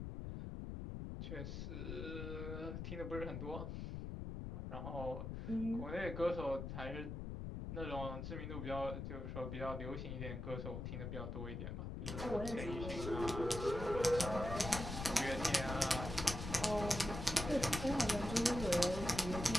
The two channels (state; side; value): noise; left; rumble, 5 dB below the sound